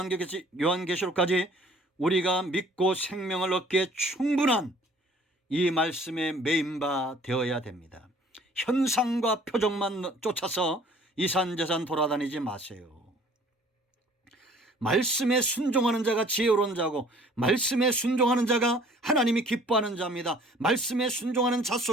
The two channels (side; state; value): both; normal; correlation 0.54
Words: 요한계시록까지 우리가 믿고 생명을 얻기에 충분한 이 말씀에 매인바 되어야 됩니다. 현상과 표적만 쫓아서 이산저산 돌아다니지 마세요. 말씀에 순종하는 자가 지혜로운 자고 말씀에 순종하는 자가 하나님이 기뻐하는 자입니다. 말씀에 순종하는 자